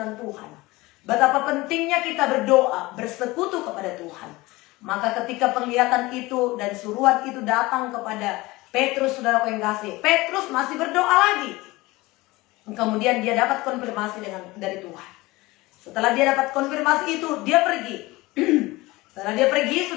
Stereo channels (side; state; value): right; quieter; 20.8 dB